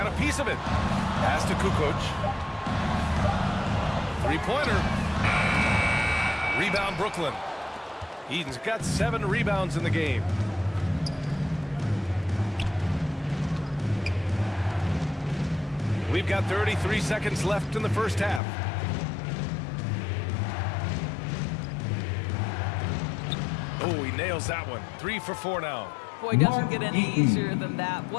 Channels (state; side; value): drops out; right; at 18.4 s